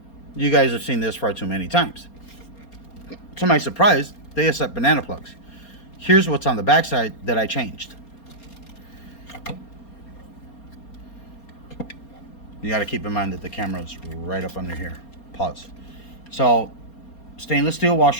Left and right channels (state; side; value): late; right; 4.3 ms